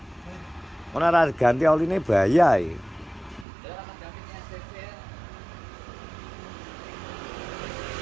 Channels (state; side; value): drops out; left; at 3.5 s